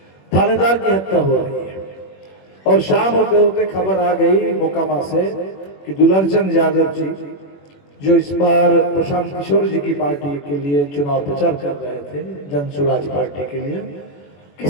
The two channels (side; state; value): right; late; 21 ms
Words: थानेदार की हत्या हो रही है। और शाम होते होते खबर आ गई मोकामा से कि दुलरचंद यादव जी जो इस बार प्रशांत किशोर जी की पार्टी के लिए चुनाव प्रचार कर रहे थे, जन सुराज पार्टी के लिए,